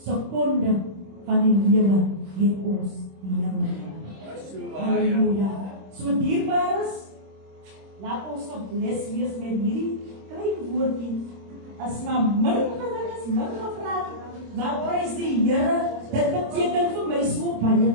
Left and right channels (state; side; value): late; left; 26 ms